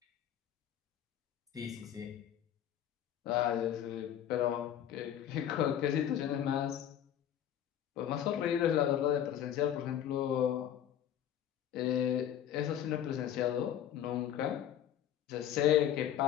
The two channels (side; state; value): right; quieter; 10.3 dB